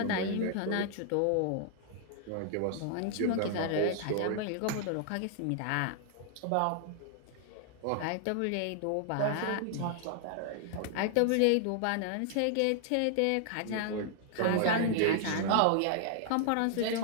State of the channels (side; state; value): both; different; correlation 0.00